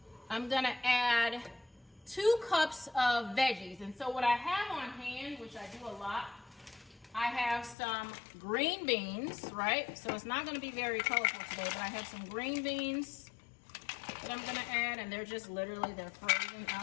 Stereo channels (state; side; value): drops out; right; at 7.8 s